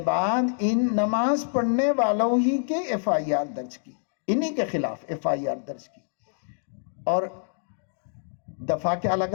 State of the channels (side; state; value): right; silent; digital silence